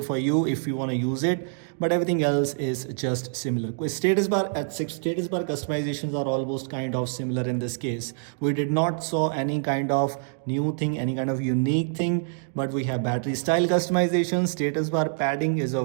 for you if you want to use it, but everything else is just similar. With status bar status bar customizations are almost kind of similar in this case. We did not saw any kind of new thing, any kind of unique thing, but we have battery style customization. Status bar padding is a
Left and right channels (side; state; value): left; silent; digital silence